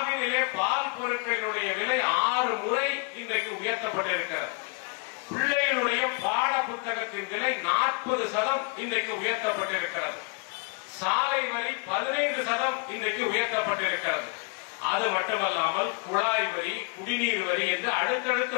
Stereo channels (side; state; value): right; quieter; 35.9 dB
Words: பால் பொருட்களினுடைய விலை 6 முறை இன்றைக்கு உயர்த்தப்பட்டிருக்கிறது. பிள்ளைகளுடைய பாட புத்தகத்தின் விலை 40% இன்றைக்கு உயர்த்தப்பட்டிருக்கிறது. சாலை வரி 15% இன்றைக்கு உயர்த்தப்பட்டிருக்கிறது. அது மட்டுமல்லாமல் குழாய் வரி, குடிநீர் வரி என்று அடுத்தடுத்த